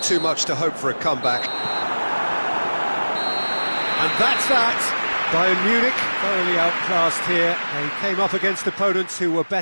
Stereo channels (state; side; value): inverted; both; correlation -1.00